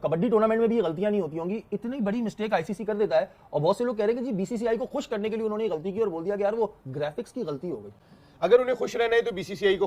कबड्डी टूर्नामेंट में भी गलतियां नहीं होती होंगी, इतनी बड़ी मिस्टेक आईसीसी कर देता है। और बहुत से लोग कह रहे हैं कि जी बीसीसीआई को खुश करने के लिए उन्होंने गलती की और बोल दिया कि यार वो ग्राफिक्स की गलती हो गई। अगर उन्हें खुश रहना है तो बीसीसीआई को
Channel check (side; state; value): both; identical; correlation 1.00